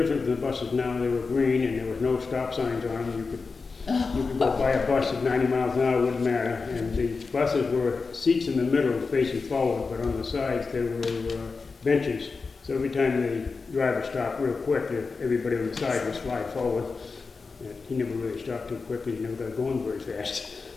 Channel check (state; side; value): quieter; right; 4.5 dB